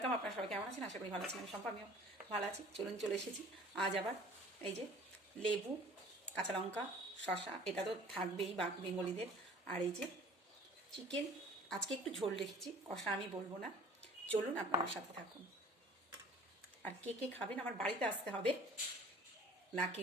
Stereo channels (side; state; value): both; normal; correlation 0.49